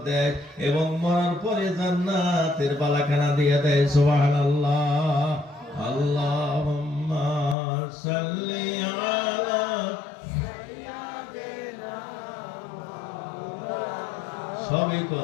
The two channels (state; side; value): drops out; right; at 7.6 s